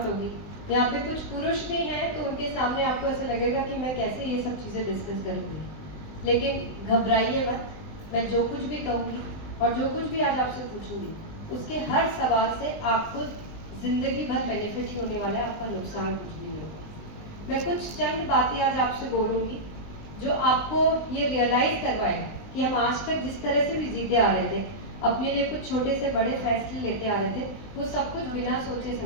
होगी। यहाँ पे कुछ पुरुष भी हैं तो उनके सामने आपको ऐसा लगेगा कि मैं कैसे ये सब चीज़ें डिस्कस करूँगी, लेकिन घबराइए मत। मैं जो कुछ भी कहूँगी और जो कुछ भी आज आपसे पूछूंगी उसके हर सवाल से आपको जिंदगी भर बेनिफिट ही होने वाला है, आपका नुकसान कुछ भी नहीं होगा। मैं कुछ चंद बातें आज आपसे बोलूँगी जो आपको ये रियलाइज करवाएगा कि हम आज तक जिस तरह से भी जीते आ रहे थे, अपने लिए कुछ छोटे से बड़े फैसले लेते आ रहे थे, वो सब कुछ बिना सोचे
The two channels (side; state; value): right; late; 19 ms